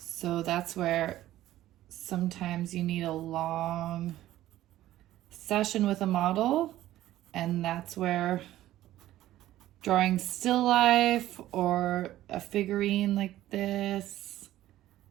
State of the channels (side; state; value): left; quieter; 14.3 dB